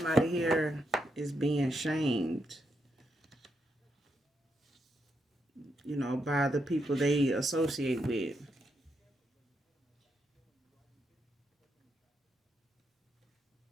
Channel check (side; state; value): both; normal; correlation 0.81